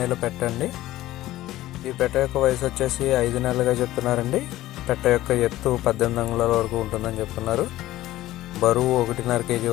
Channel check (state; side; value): quieter; right; 15.6 dB